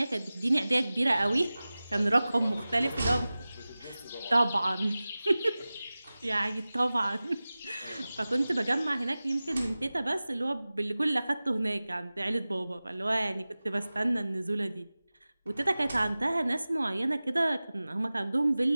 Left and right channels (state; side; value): inverted; both; correlation -0.97